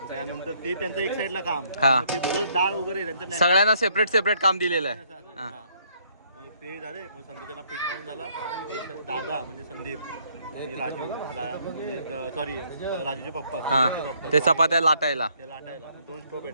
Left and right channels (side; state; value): both; inverted; correlation -0.67